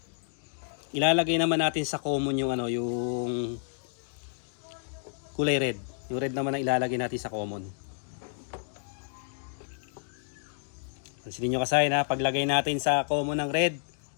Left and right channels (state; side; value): silent; right; digital silence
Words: Ilalagay naman natin sa common yung yung kulay red. Yung red naman ang ilalagay natin sa common. Pansinin nyo kasi paglagay natin sa common ng red,